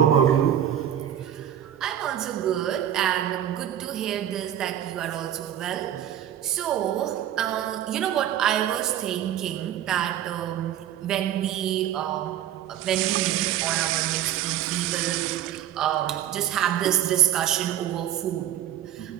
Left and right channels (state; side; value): quieter; left; 10.9 dB